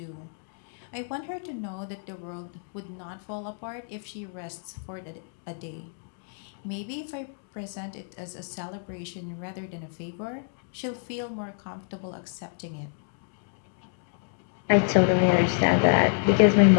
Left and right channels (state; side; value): silent; right; digital silence